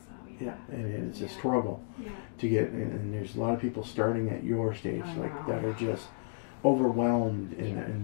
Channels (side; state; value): right; silent; digital silence